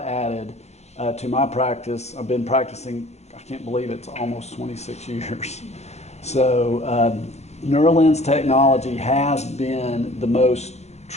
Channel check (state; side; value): late; right; 0.32 ms